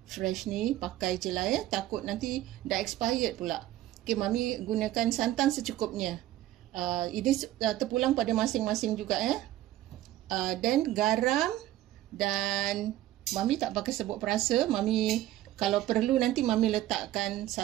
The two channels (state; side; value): quieter; left; 14.3 dB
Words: fresh ni, pakai je lah takut nanti dah expired pula. Okey, Mami gunakan santan secukupnya. Ini terpulang pada masing-masing juga dan garam, dan Mami tak pakai serbuk perasa. Mami kalau perlu nanti Mami letakkan